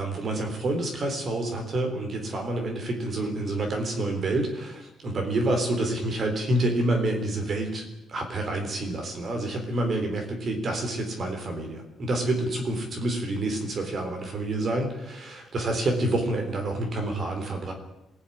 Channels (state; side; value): normal; both; correlation 0.71